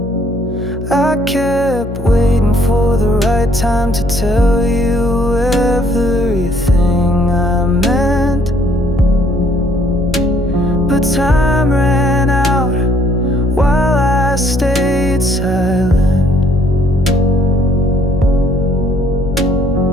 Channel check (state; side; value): noise; left; hum, 9 dB below the sound